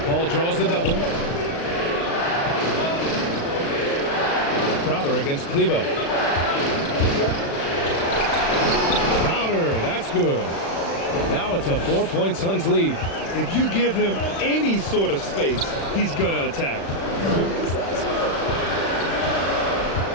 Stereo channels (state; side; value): late; right; 35 ms